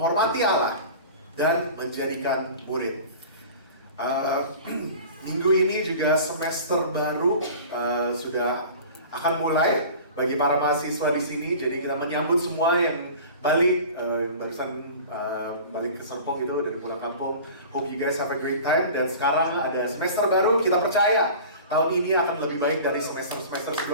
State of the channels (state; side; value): inverted; both; correlation -0.40